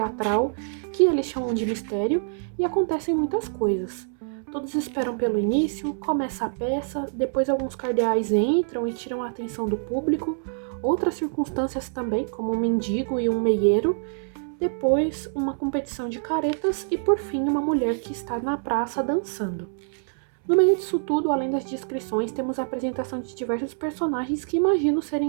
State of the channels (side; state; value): left; silent; 61 dB below the other